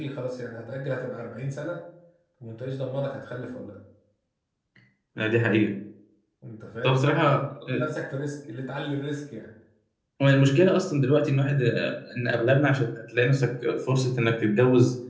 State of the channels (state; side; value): identical; both; correlation 1.00